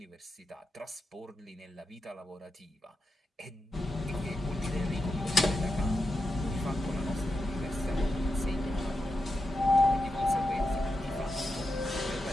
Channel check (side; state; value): both; normal; correlation 0.88